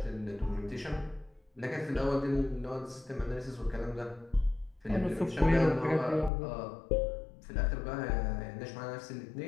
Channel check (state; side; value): drops out; right; at 6.3 s